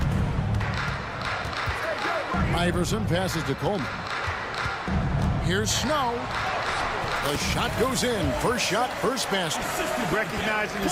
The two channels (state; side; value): identical; both; correlation 1.00